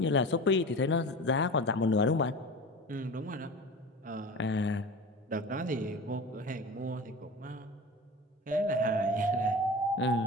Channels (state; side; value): normal; both; correlation 0.33